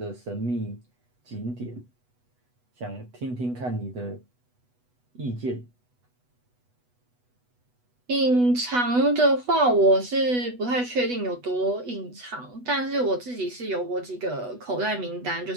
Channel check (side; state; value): left; late; 8.1 ms